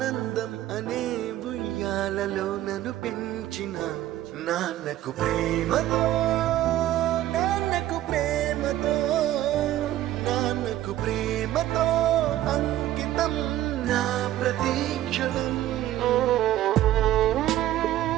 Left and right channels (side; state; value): left; quieter; 13.7 dB